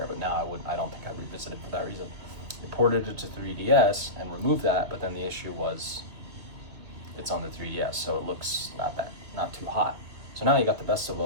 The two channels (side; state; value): left; late; 2.4 ms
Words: but now I don't think I'd revisit it for that reason. I ported it to 3DS and removed that, but then the issue was it's on the 3DS, so it looks not too hot. So now you got the best of